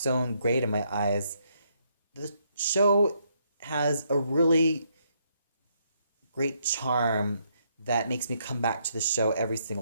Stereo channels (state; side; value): inverted; both; correlation -0.74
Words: great in my eyes. The show has a really great charm that makes me come back to the show every